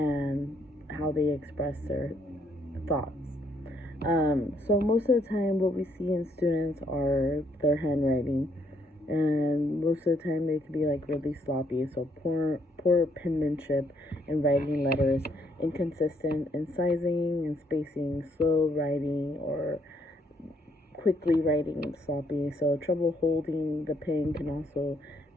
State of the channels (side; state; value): both; normal; correlation 0.71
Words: how they express their thoughts. So most of the time what we see in students are their handwriting, and most of the time they can be like really sloppy, so poor penmanship in writing letters, inconsistent in sizing and spacing, slow writing, or quickly writing sloppy. So trouble holding the pen can also